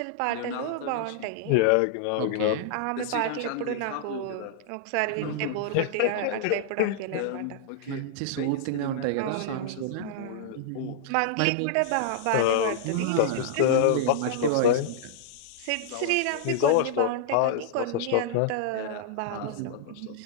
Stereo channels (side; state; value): both; different; correlation -0.01